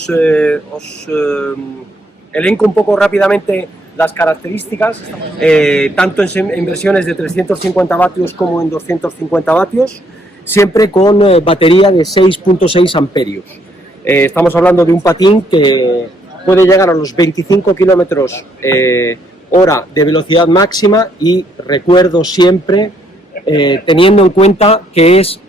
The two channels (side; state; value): both; normal; correlation 0.70